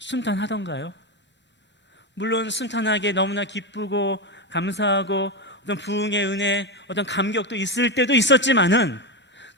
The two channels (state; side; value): normal; both; correlation 0.12